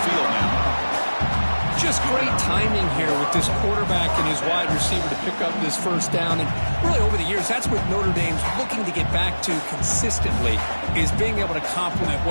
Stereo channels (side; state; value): both; inverted; correlation -1.00